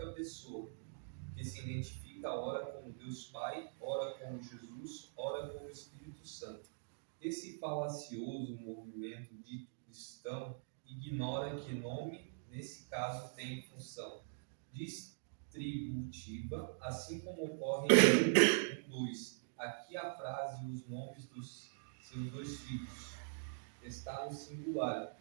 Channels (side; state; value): left; silent; digital silence